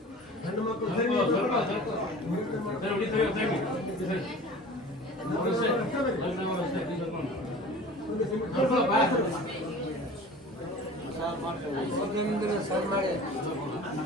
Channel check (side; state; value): both; normal; correlation 0.41